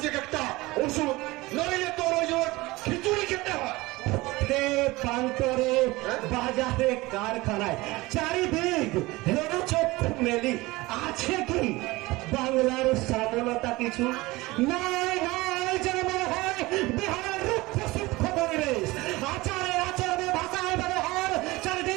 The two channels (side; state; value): left; quieter; 20.9 dB